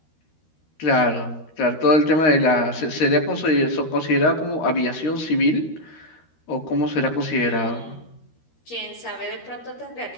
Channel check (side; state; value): right; late; 13 ms